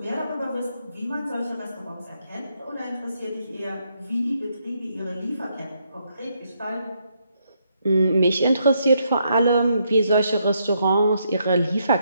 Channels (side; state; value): both; inverted; correlation -0.77